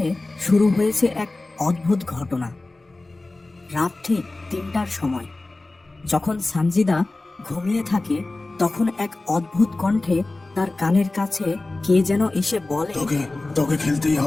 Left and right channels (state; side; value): quieter; right; 3.1 dB